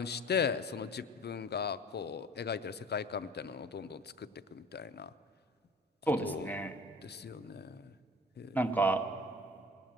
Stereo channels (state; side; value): normal; both; correlation 0.44